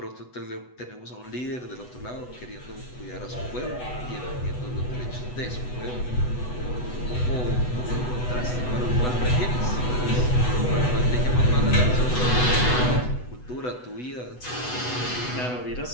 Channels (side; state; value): right; late; 8.1 ms